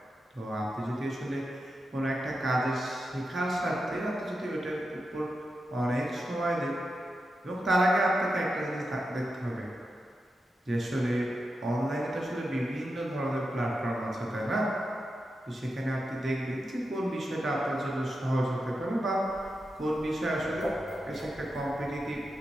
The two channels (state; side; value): normal; both; correlation 0.89